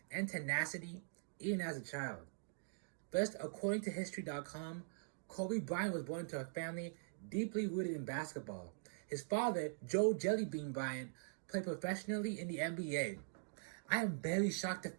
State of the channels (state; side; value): silent; left; digital silence